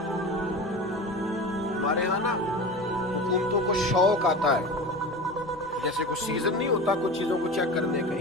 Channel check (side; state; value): left; noise; hum, 26 dB below the sound